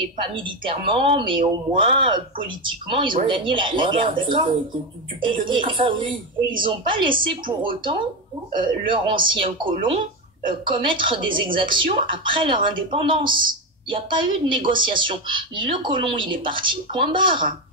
pas militairement, mais au moins politiquement, ils ont gagné la guerre, d'accord? Et ils n'ont pas laissé pour autant leurs anciens colons commettre des exactions après leur indépendance. Il n'y a pas eu de négociation. Le colon, il est parti, point barre.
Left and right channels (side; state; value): both; normal; correlation 0.14